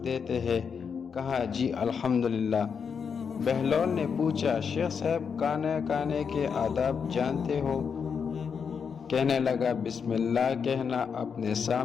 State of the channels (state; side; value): quieter; right; 6.4 dB